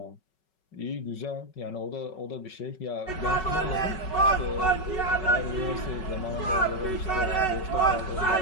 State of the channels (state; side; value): late; right; 5.3 ms